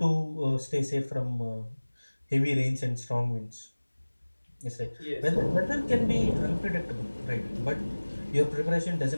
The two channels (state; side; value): inverted; both; correlation -1.00